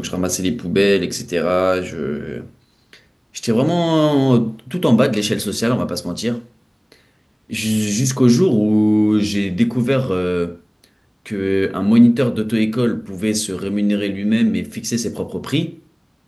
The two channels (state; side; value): identical; both; correlation 1.00